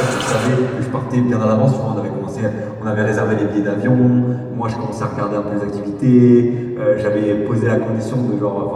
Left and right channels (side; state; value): both; identical; correlation 1.00